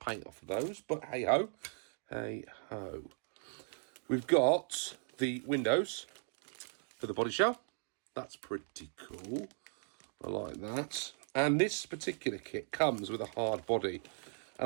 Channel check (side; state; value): left; silent; 53 dB below the other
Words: off of those. But hey-ho. Hey-ho. We've got the windows for the body shell. That's pretty cool. I like that. And this particular kit comes with a hard body. And